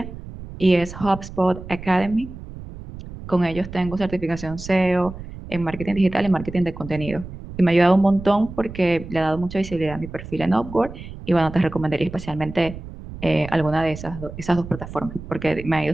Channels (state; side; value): noise; right; rumble, 12 dB below the sound